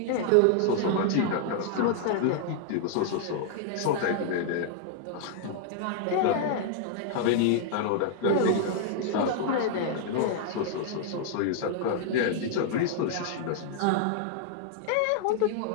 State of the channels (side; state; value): both; different; correlation 0.00